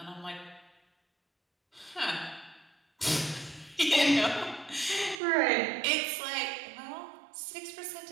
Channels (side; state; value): left; drops out; at 5.2 s